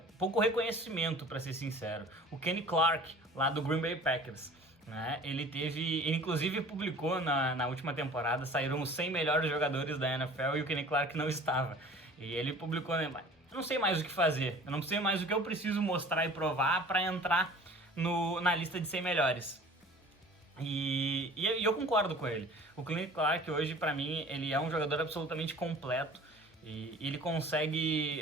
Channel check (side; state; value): both; normal; correlation 0.45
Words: reconhecimento, para ser sincero. O Kenny Clark, lá do Green Bay Packers. Né? Ele inclusive publicou na última temporada, saíram os 100 melhores jogadores da NFL e o Kenny Clark não estava. E ele publicou, né? Eu não sei mais o que fazer, eu não sei mais o que eu preciso mostrar e provar para entrar na lista de 100 melhores. E eu concordo com ele. O Kenny Clark hoje, para mim, ele é um jogador absolutamente completo e ele